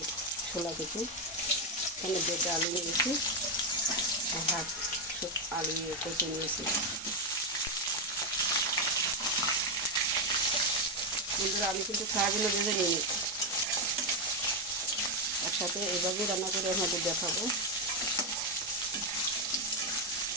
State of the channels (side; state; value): both; normal; correlation 0.05